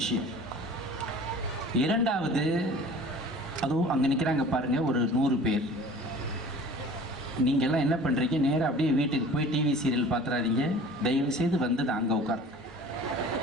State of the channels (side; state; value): both; normal; correlation 0.44